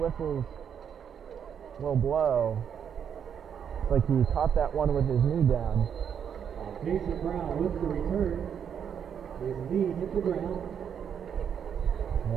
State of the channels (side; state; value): left; quieter; 8.0 dB